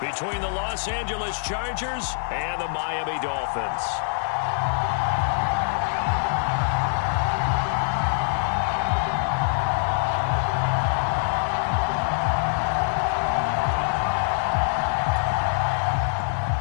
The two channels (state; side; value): silent; right; digital silence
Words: the Los Angeles Chargers and the Miami Dolphins.